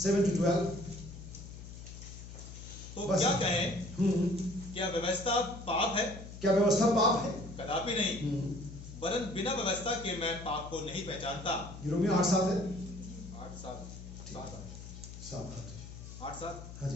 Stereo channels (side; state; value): left; noise; hum, 13 dB below the sound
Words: 7 to 12। तो क्या कहें? क्या व्यवस्था पाप है? क्या व्यवस्था पाप है? कदापि नहीं, वरन बिना व्यवस्था के मैं पाप को नहीं पहचानता। रोमियो 8:7 है। 8:7। हाँ